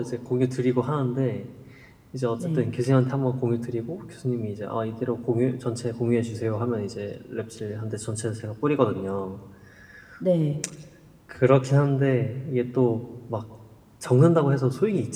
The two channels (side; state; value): both; identical; correlation 1.00